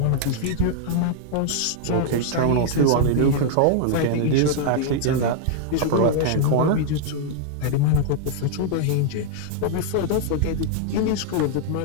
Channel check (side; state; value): both; different; correlation -0.01